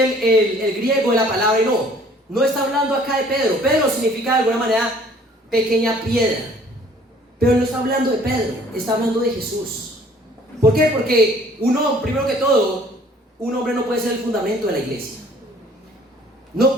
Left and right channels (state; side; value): normal; both; correlation 0.56